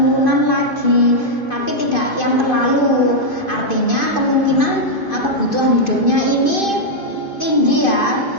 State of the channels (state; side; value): late; right; 2.5 ms